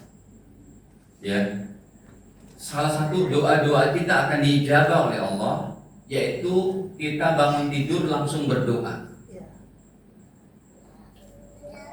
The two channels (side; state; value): both; identical; correlation 1.00